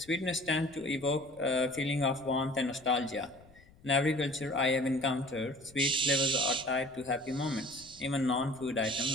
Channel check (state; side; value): noise; left; rumble, 25 dB below the sound